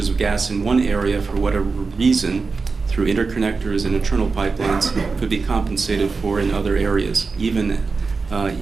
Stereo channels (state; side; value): quieter; left; 4.4 dB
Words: of gas in one area, for whatever reason, through interconnectors and internal pipelines, could be compensated for in other areas, even